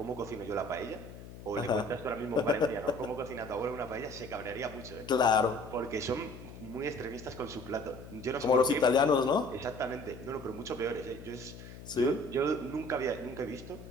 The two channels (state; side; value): noise; left; hum, 14 dB below the sound